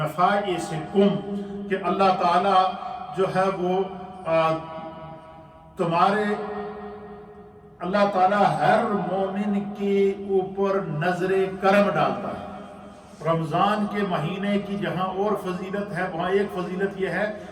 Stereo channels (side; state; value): both; identical; correlation 1.00